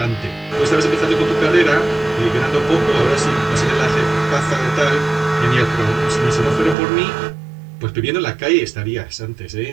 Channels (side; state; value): left; drops out; at 6.8 s